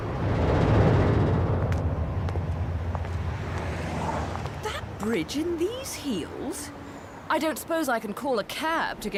Bridge in these heels? I don't suppose I can call a cab to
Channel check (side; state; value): both; identical; correlation 1.00